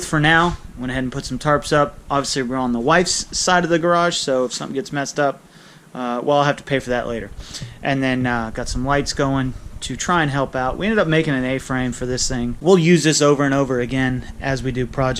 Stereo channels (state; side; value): identical; both; correlation 1.00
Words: for now. Went ahead and put some tarps up. Obviously we're on the wife's side of the garage, so if something gets messed up, well, I'll have to pay for that later. And then got some lights going to try and help out. We ended up making an A-frame for this thing. We'll use this over and over again as we do